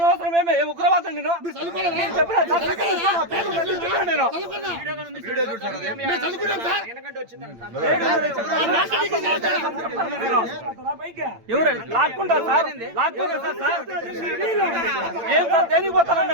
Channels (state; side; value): late; left; 8.9 ms